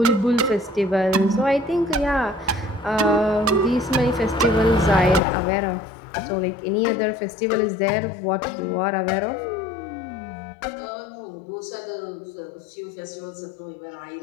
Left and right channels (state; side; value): drops out; right; at 5.2 s